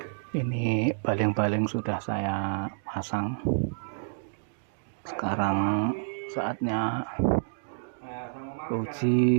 Ini baling-baling sudah saya pasang. Sekarang saatnya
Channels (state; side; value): silent; left; digital silence